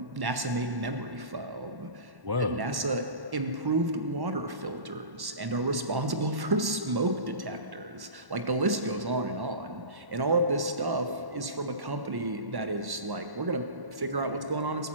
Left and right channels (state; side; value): late; left; 1.1 ms